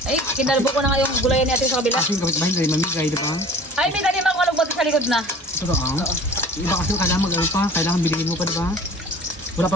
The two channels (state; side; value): normal; both; correlation 0.44